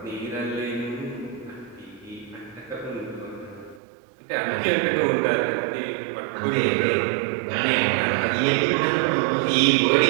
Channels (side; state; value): left; drops out; at 3.8 s